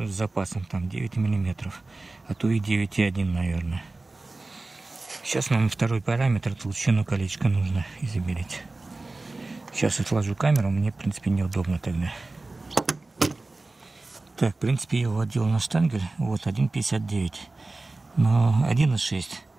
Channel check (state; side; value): quieter; left; 3.2 dB